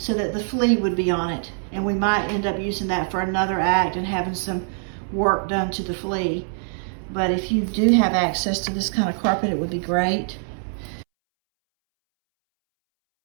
that the flea would be on it, and we might end up using that for another act and having some work done to the flea. But if you do have access to this kind of carpet, it would be great.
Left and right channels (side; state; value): left; silent; 63 dB below the other